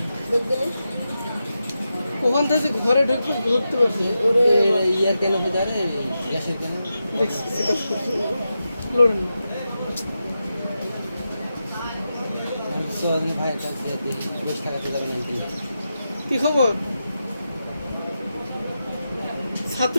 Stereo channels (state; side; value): inverted; both; correlation -0.89